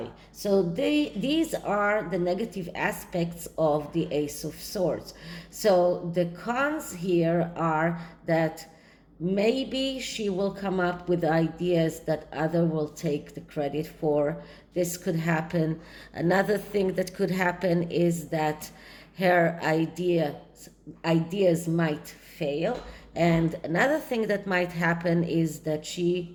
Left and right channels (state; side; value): identical; both; correlation 1.00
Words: So these are the negative aspects of the Ace of Swords. So the cons here are that maybe she will come up with ideas that other will take the credit for. This could happen. Another thing that could happen is that her ideas might fail, And another thing that might happen is that she